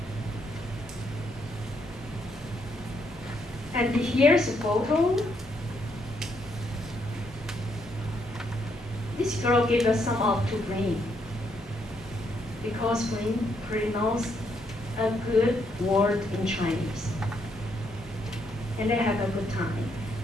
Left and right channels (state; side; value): normal; both; correlation 0.75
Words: And here's a photo. This girl gave us some up to bring, because bring pronounces a good word in Chinese. And they have a good time.